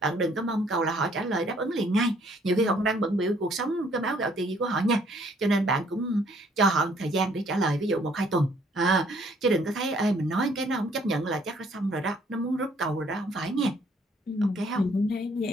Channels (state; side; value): normal; both; correlation 0.63